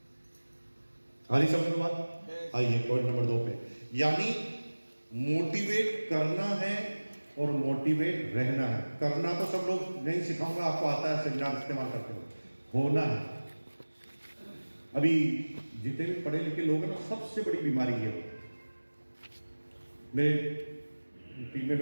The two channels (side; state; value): both; inverted; correlation -1.00